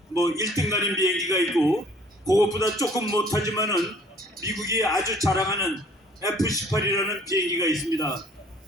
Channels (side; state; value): both; normal; correlation 0.56